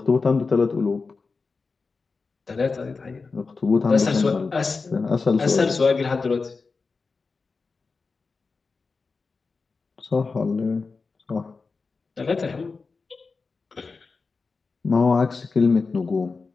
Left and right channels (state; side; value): quieter; right; 4.4 dB